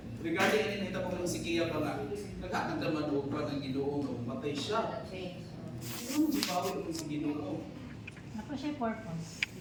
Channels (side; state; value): both; identical; correlation 1.00